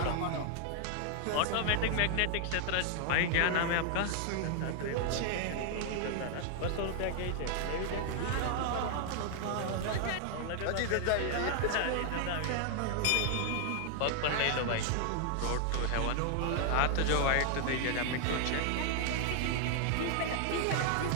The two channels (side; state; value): both; different; correlation 0.00